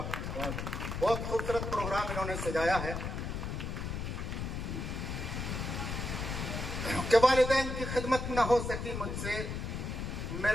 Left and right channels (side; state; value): left; noise; rumble, 4 dB below the sound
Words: बहुत खूबसूरत प्रोग्राम इन्होंने सजाया है कि वालिदैन की खिदमत न हो सकी मुझसे।